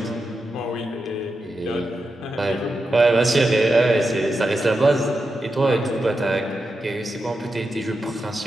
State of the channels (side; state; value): both; normal; correlation 0.88